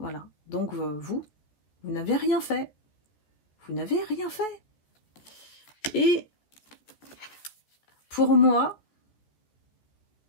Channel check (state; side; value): late; right; 13 ms